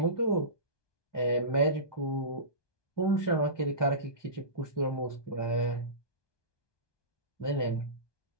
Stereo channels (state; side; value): late; right; 1.2 ms